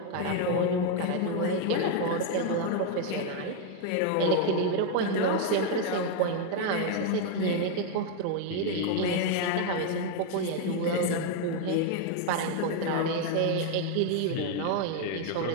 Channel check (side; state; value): both; different; correlation 0.01